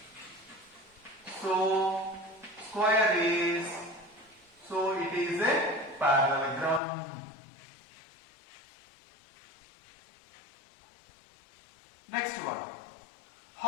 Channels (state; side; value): drops out; right; at 6.8 s